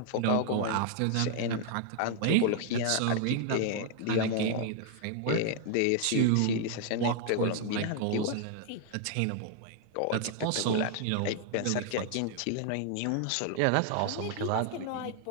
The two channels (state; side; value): different; both; correlation 0.00